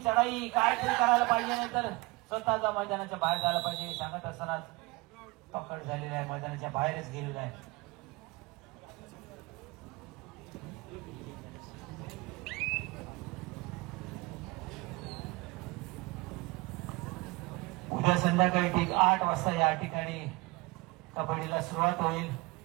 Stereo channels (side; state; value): left; quieter; 24.2 dB